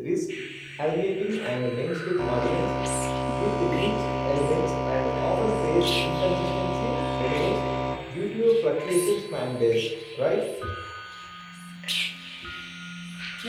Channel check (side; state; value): both; identical; correlation 1.00